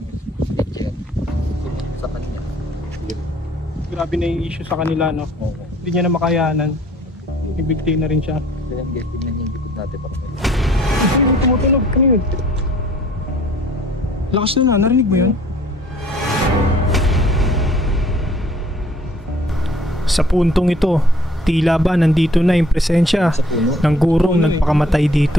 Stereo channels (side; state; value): both; normal; correlation 0.56